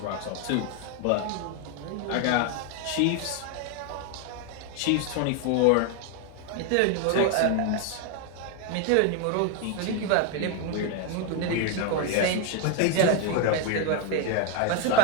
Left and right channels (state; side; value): different; both; correlation 0.01